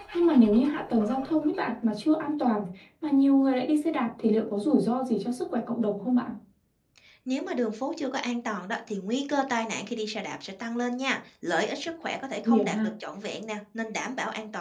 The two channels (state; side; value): identical; both; correlation 1.00